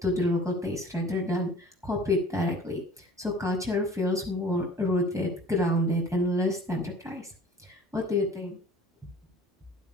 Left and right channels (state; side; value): normal; both; correlation 0.47